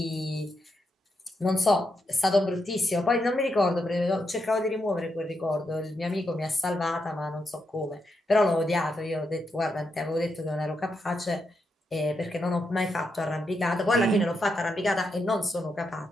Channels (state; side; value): normal; both; correlation 0.83